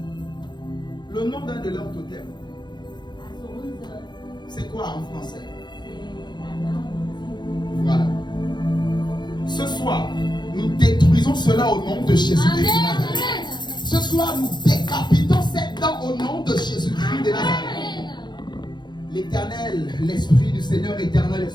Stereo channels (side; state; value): right; late; 0.21 ms